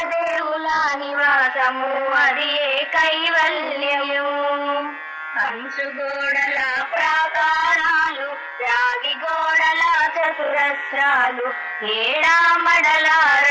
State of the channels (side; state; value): both; identical; correlation 1.00